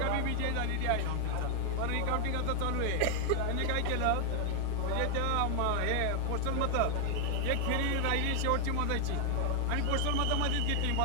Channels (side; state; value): both; different; correlation 0.01